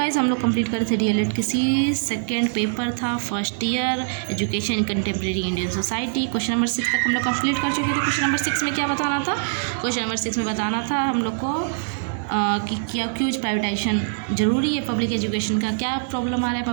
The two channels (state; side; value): silent; left; digital silence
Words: Guys हम लोग complete कर थे डीएलएड किसी सेकेंड पेपर था first year education in contemporary Indian society. Question number 6 तक हम लोग कंप्लीट कर चुके थे। क्वेश्चन नंबर 6 में क्या बताना था? क्वेश्चन नंबर 6 में बताना था हम लोग को कि क्या क्यों प्राइवेटाइजेशन ज़रूरी है पब्लिक एजुकेशन का, क्या प्रॉब्लम आ रहा है